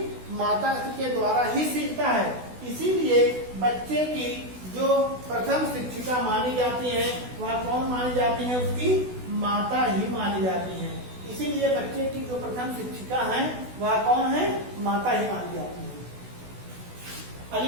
माता के द्वारा ही सीखता है। इसीलिए बच्चे की जो प्रथम शिक्षिका मानी जाती है वह कौन मानी जाती है? उसकी माता ही मानी जाती है। इसीलिए बच्चे की जो प्रथम शिक्षिका है वह कौन है? माता ही मानी जाती है।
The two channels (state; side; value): late; left; 16 ms